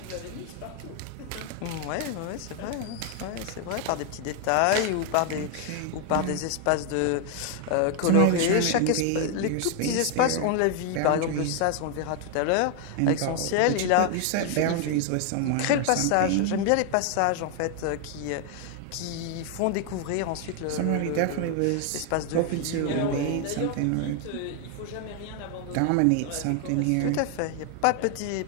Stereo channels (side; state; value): both; different; correlation 0.00